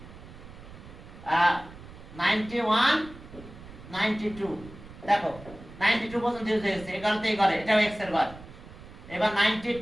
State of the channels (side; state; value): right; noise; rumble, 17 dB below the sound